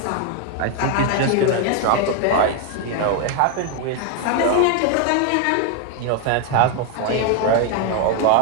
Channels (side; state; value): both; different; correlation 0.01